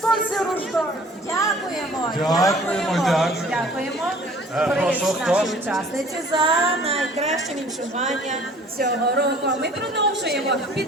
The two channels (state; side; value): normal; both; correlation 0.51